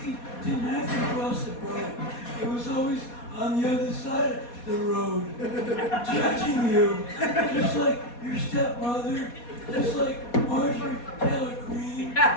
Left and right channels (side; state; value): right; late; 4.2 ms